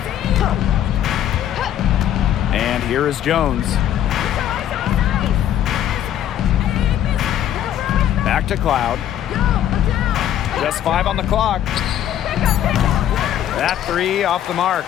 And here is Jones. Back to Cloud. Just 5 on the clock. That 3 off the mark.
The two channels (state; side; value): quieter; right; 11.0 dB